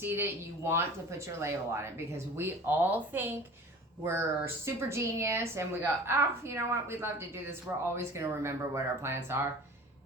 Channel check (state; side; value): normal; both; correlation 0.42